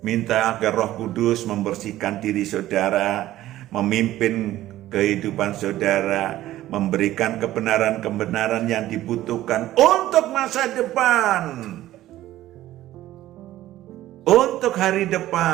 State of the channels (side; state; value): left; quieter; 14.5 dB